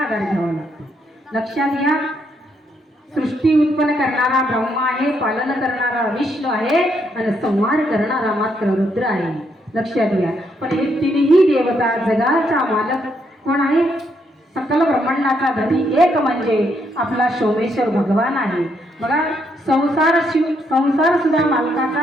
घ्यावा लागतो. लक्षात घ्या, सृष्टी उत्पन्न करणारा ब्रह्मा आहे, पालन करणारा विष्णू आहे आणि संहार करणारा मात्र रुद्र आहे. लक्षात घ्या. पण हे तिन्ही देवता जगाचा मालक कोण आहे? सकल ब्रह्मांडाचा धनी एक म्हणजे आपला सोमेश्वर भगवान आहे. बघा, संसार सुद्धा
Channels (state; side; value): normal; both; correlation 0.75